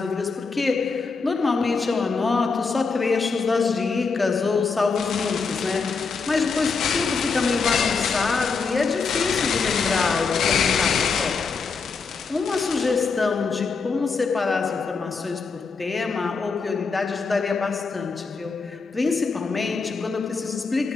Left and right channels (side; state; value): right; quieter; 4.8 dB